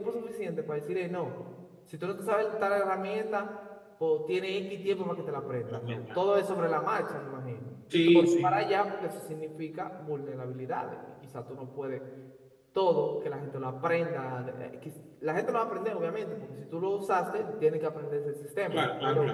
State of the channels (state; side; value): identical; both; correlation 1.00